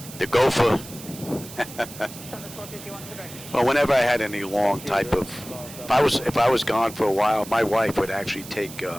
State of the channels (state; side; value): noise; right; hiss, 15 dB below the sound